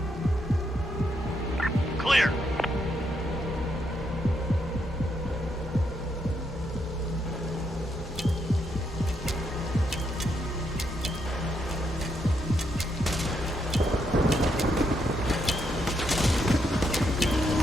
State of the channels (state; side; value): normal; both; correlation 0.78